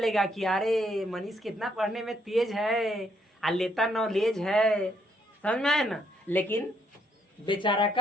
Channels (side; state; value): both; normal; correlation 0.72